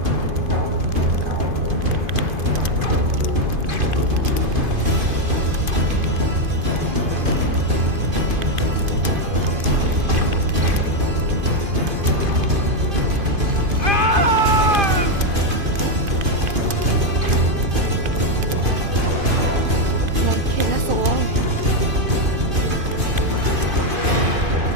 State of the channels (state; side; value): late; left; 2.5 ms